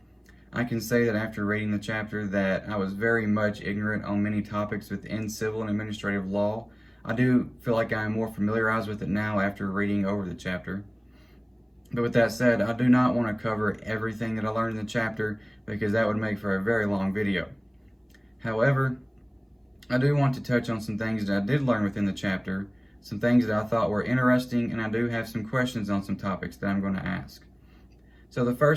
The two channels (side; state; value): both; identical; correlation 1.00